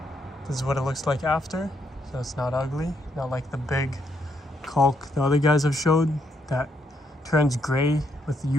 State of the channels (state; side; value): normal; both; correlation 0.76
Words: This is what it looks like after, so it's not ugly, not like the big caulk the other guys have showed that turns gray with